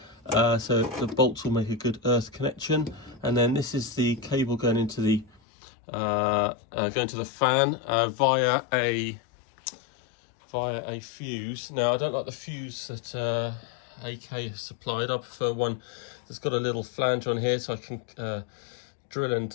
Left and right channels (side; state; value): right; drops out; at 5.4 s